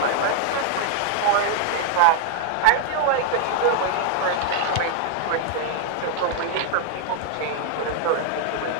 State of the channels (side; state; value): both; different; correlation 0.00